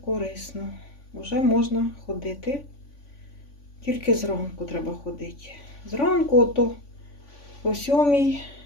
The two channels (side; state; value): right; late; 3.5 ms